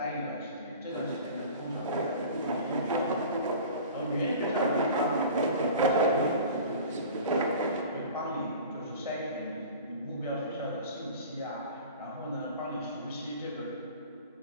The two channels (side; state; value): both; inverted; correlation -0.40